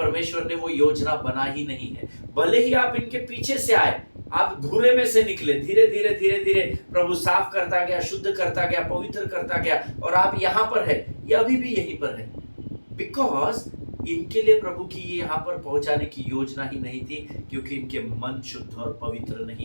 ने वो योजना बना ही नहीं है। भले ही आप इनके पीछे से आए, आप घूरे में से निकले, धीरे धीरे प्रभु साफ करता गया, शुद्ध करता गया, पवित्र करता गया, और आप यहाँ पर है, ये अभी भी यहीं पर है। बिकॉज इनके लिए प्रभु की ये यहाँ पर पहुंचाने की योजना ही नहीं थी, क्योंकि इनके मन शुद्ध और पवित्र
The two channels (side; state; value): both; inverted; correlation -1.00